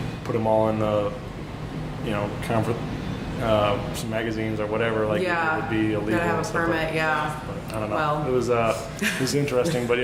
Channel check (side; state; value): both; identical; correlation 1.00